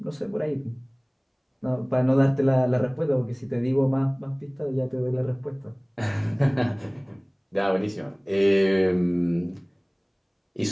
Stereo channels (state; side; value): identical; both; correlation 1.00